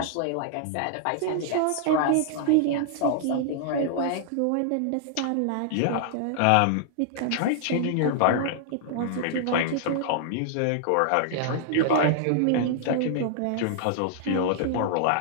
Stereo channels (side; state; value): both; different; correlation -0.01